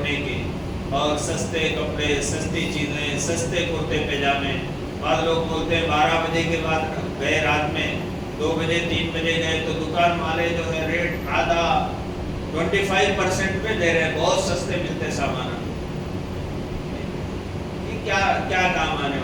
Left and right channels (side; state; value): both; identical; correlation 1.00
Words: کی اور سستے کپڑے, سستی چیزیں, سستے کرتے پاجامے, بعض لوگ بولتے ہیں 12 بجے کے بعد گئے, رات میں 2 بجے 3 بجے گئے تو دکان والے جو ہے ریٹ آدھا 25% پہ دے رہے ہیں, بہت سستے ملتے سامان. کیا کام آنے